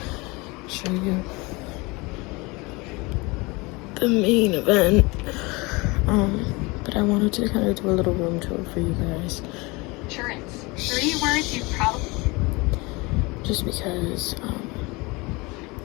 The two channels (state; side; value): quieter; right; 25.2 dB